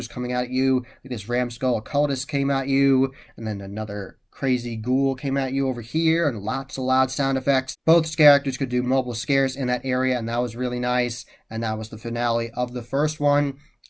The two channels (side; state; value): both; identical; correlation 1.00